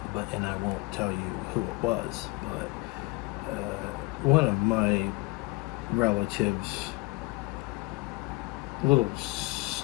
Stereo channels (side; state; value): right; quieter; 23.9 dB